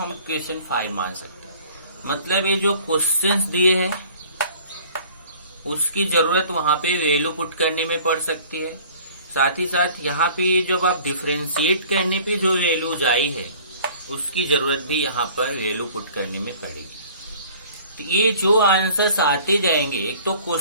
इक्वेशन 5 मान सकते हैं। मतलब ये जो क्वेश्चंस दिए हैं उसकी जरूरत वहां पे वैल्यू पुट करने में पड़ सकती है, साथ ही साथ यहाँ पे जब आप डिफरेंशिएट करने पे जो वैल्यूज आई है उसकी जरूरत भी यहाँ पर वैल्यू पुट करने में पड़ेगी। तो ये जो आंसर्स आते जाएंगे, एक तो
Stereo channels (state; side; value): inverted; both; correlation -0.50